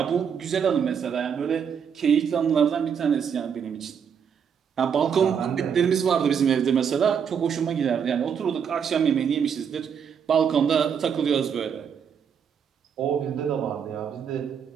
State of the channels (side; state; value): left; quieter; 7.4 dB